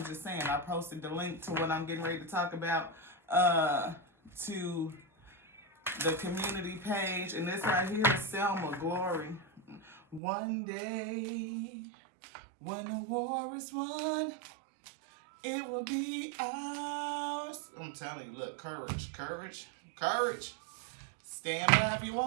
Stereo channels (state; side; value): drops out; left; at 10.2 s